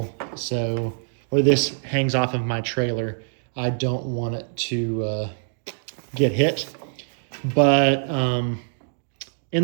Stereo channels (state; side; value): silent; left; digital silence